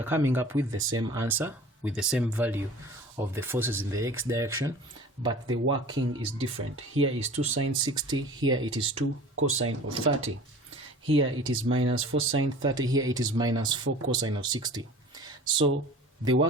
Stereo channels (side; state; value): both; normal; correlation 0.42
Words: coming up with the same answer, with the same value of the forces in the x direction, but the working is different. Here is 2 sine 60, here it is 2 cosine of 30. Here it is minus 4 sine 30, here it is minus 4 cosine of 60. So the